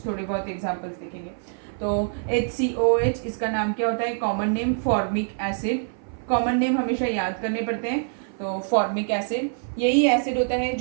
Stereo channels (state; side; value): silent; left; 56 dB below the other